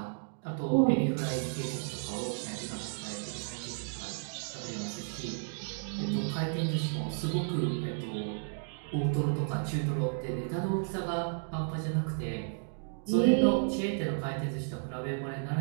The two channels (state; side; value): silent; left; digital silence